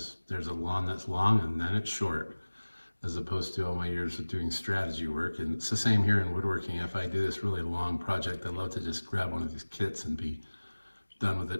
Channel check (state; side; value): inverted; both; correlation -1.00